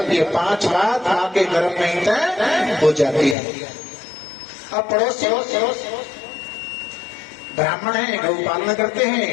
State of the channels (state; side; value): drops out; right; at 3.4 s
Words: ये 5 बात माँ के गर्भ में तय हो जाती है। अब पड़ोसी ब्राह्मण है, गौ पालन करते हैं,